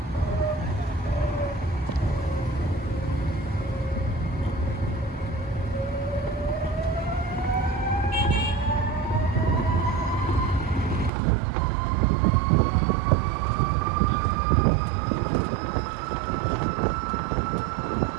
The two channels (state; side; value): drops out; left; at 11.1 s